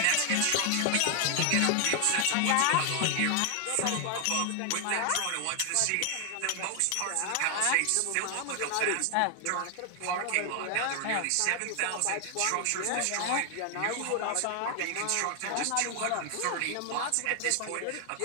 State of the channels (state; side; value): different; both; correlation 0.00